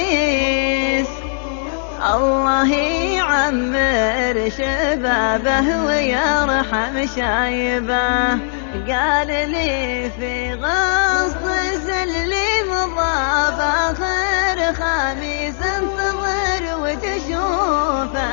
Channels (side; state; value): right; silent; digital silence